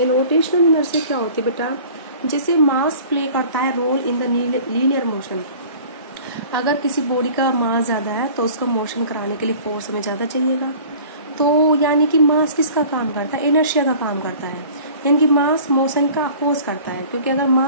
rotational inertia क्या होती है बेटा, जैसे मास प्ले करता है role in the linear motion. अगर किसी बॉडी का मास ज़्यादा है तो उसको मोशन कराने के लिए फोर्स हमें ज़्यादा चाहिएगा। तो यानी कि मास किसका काम करता है? इनर्शिया का काम करता है। यानी कि मास मोशन का अपोज करता है, क्योंकि अगर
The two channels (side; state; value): both; inverted; correlation -0.46